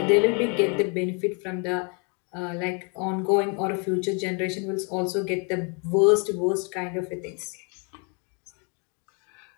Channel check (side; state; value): right; quieter; 35.7 dB